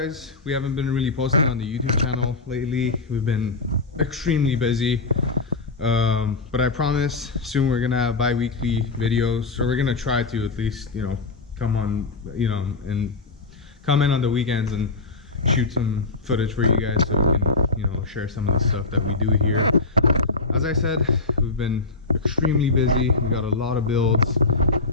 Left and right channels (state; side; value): quieter; right; 3.8 dB